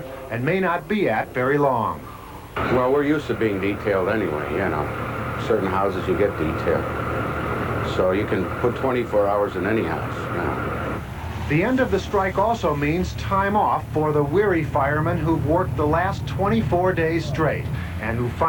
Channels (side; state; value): both; identical; correlation 1.00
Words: and may not be at very long. Well, we're used to being detailed anyway, you know. Certain houses you get detailed. So you can put 24 hours in any house, you know. The end of the strike also means time off for the weary firemen who've worked the last 24 days straight and who